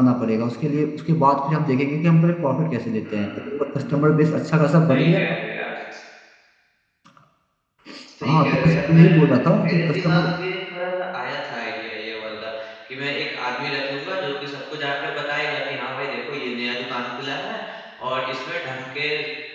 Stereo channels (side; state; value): both; identical; correlation 1.00